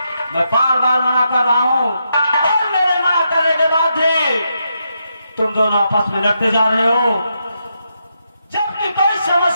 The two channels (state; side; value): inverted; both; correlation -0.82